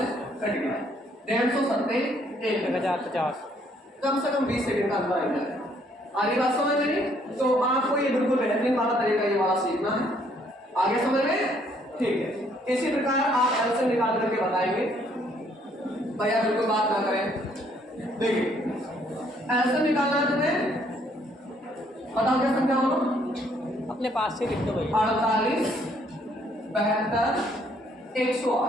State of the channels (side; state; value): both; normal; correlation 0.66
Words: कट गया। 150 सत्ते 1050। 1050। कम से कम 20 सेकंड का अंदर आ जाएगा। आगे बात समझ में? तो आपको ये बिल्कुल बेहतरीन वाला तरीका ये वाला सीखना है। आगे समझ में? ठीक है। इसी प्रकार आप एलसीएम निकाल करके बताएंगे। भैया बिल्कुल बात ना करें। देखिए एलसीएम निकालना है तुम्हें, बताओ क्या समझा बोलो? अपने पास से लिख दो भैया। 48 72